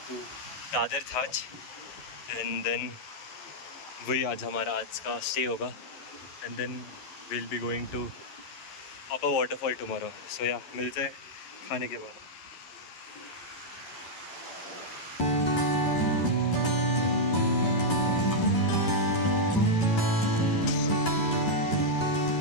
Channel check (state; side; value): late; right; 11 ms